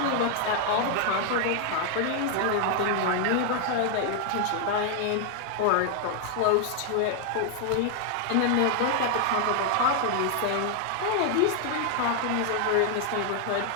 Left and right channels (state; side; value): different; both; correlation 0.00